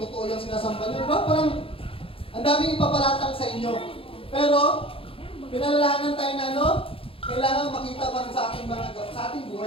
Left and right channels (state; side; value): late; right; 0.27 ms